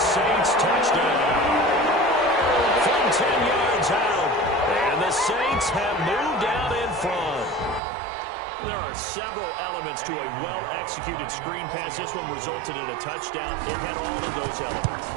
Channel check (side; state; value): left; drops out; at 7.8 s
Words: Saints touchdown. From 10 yards out. And the Saints have moved out in front. There are several elements to a well-executed screen pass. This one resulted in a touchdown. It had all of those elements.